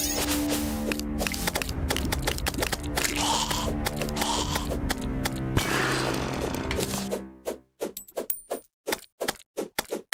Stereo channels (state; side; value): identical; both; correlation 1.00